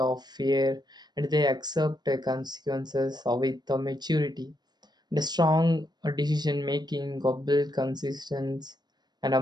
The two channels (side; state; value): left; late; 0.20 ms